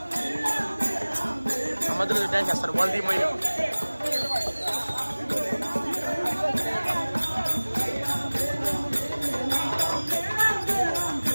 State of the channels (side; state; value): both; inverted; correlation -1.00